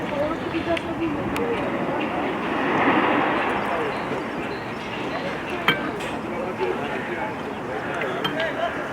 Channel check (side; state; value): both; identical; correlation 1.00